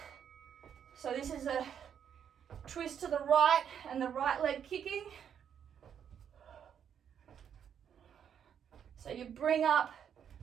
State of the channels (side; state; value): left; quieter; 8.4 dB